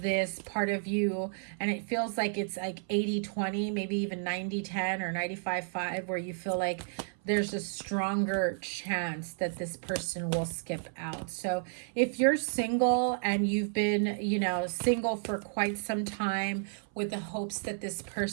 part of you, and it feels like it's like 80-20, maybe even 90-10 or 95-5, where you feel like there's a stronger chance that this person will skip out. So if you're single and you've been, you know, single for quite some time with the hopes that this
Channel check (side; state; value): left; silent; 57 dB below the other